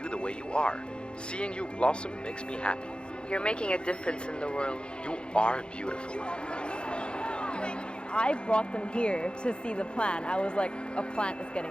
the way you are. Seeing you blossom makes me happy. You're making a difference in the world. You are beautiful. I brought them here to see the plant. I was like, a plant is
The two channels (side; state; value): right; late; 0.053 ms